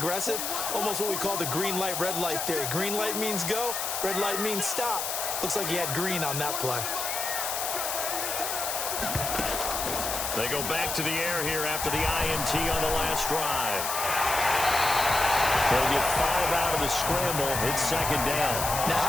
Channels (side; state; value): left; noise; hiss, 2 dB below the sound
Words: almost what we call the green light, red light theory. Green light means go, red light means stop. Looks like he had green on that play. They go back to the air here after the INT on the last drive. They'll get 5 out of the scramble. It's 2nd down. Now,